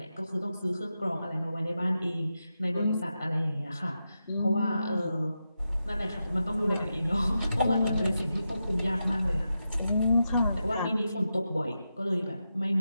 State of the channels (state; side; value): inverted; both; correlation -0.88